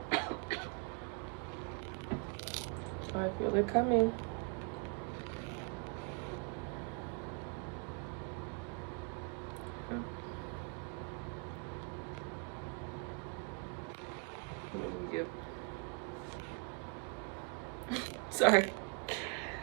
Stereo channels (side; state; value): left; quieter; 37.8 dB